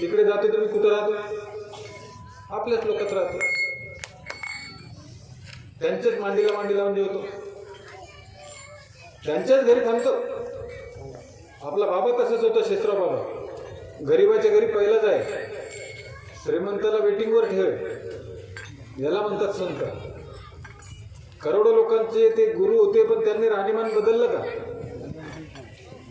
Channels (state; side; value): identical; both; correlation 1.00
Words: जातो. तर मी कुठं राहतो? आपल्याच लोकात राहतो. त्यांच्याच मांडीला मांडी लावून जेवतो, त्यांच्याच घरी थांबतो. आपला बाबा तसाच होता, शेषराव बाबा. गरीबाच्या घरी पहिलाच आहे. श्रीमंताला वेटिंगवर ठेव, याला म्हणतात संत. करोडो लोकांचे ते गुरु होते, पण त्यांनी राहणीमान बदललं का?